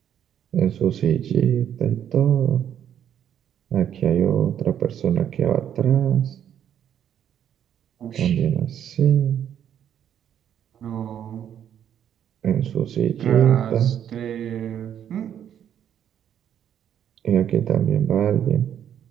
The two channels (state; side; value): quieter; left; 9.6 dB